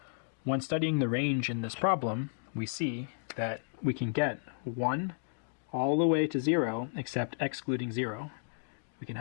When studying the range in this problem, we see that we can get 1 all the way to 0 except excluding 0. We can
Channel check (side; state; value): right; silent; digital silence